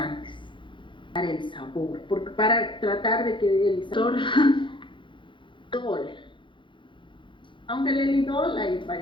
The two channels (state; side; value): late; right; 0.24 ms